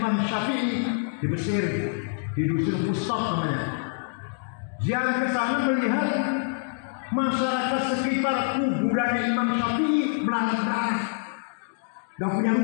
Syafi'i di Mesir, di dusun Fustat namanya. Ziarah ke sana melihat masyarakat sekitar kuburannya Imam Syafi'i melarat-larat, gak punya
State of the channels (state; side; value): silent; right; digital silence